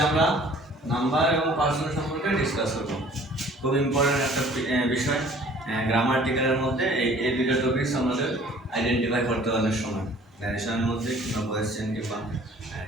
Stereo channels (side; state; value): both; normal; correlation 0.52